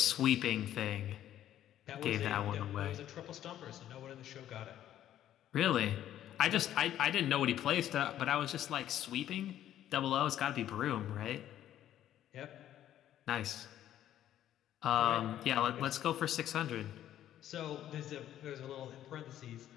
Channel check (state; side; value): quieter; right; 11.8 dB